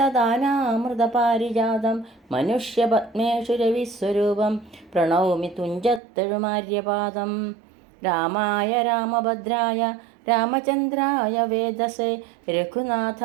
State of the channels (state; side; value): drops out; left; at 6.0 s